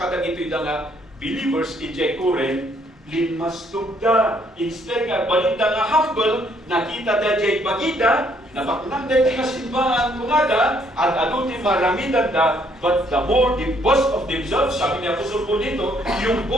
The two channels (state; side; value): normal; both; correlation 0.67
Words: ito'y nga believers in Jaykuren, linmas tugda. Instead nga, balita nga humble, nakita da jay bagida, nabaknang da nga simbahan kumada, at aduti maramidan da, but the more they boast of themselves, sabi niya Apostol po dito, yung